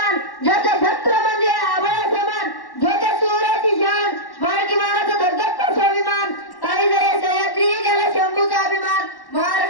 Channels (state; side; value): late; right; 1.1 ms